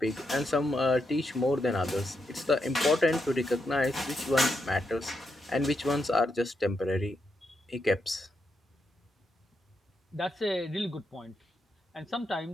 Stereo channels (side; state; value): both; normal; correlation 0.82